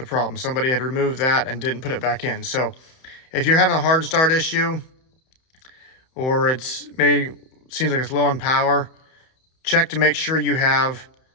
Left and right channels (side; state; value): right; late; 31 ms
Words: problem. Somebody had removed that and didn't put it back in. So if you're having a hard start issue, or it's maybe seems like it's low on power, check to make sure you have